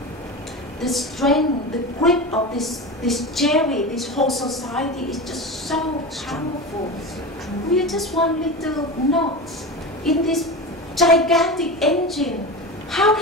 the strength, the grip of this Jerry, this whole society is just so powerful. We are just one little knot in this gigantic engine. How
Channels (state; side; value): normal; both; correlation 0.25